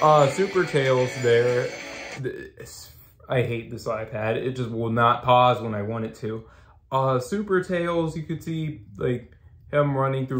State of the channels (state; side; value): identical; both; correlation 1.00